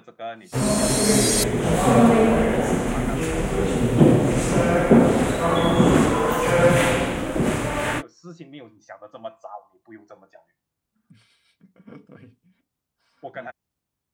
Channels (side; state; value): both; identical; correlation 1.00